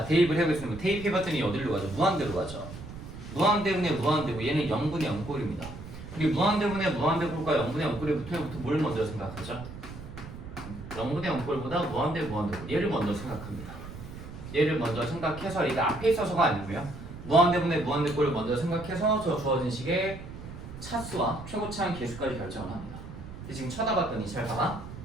대입을 해보겠습니다. 대입해봤더니 어디로 가죠? 무한대로 가죠. 무한대분의 무한대고 얘는 0분의 0꼴입니다. 우리 무한대분의 무한대꼴과 0분의 0꼴부터 뭘 먼저 생각하죠? 0분의 0꼴보다 무한대 무한대꼴 얘를 먼저 생각합니다. 얘를 먼저 생각해서 이게 앞에 있어서가 아니고요. 무한대분의 무한대꼴을 먼저 생각해서 저 주어진 식의 차수와 최고차항 계수까지 결정을 합니다. 지금 쳐다봤더니 잘 봐봐.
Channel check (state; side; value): noise; right; rumble, 12 dB below the sound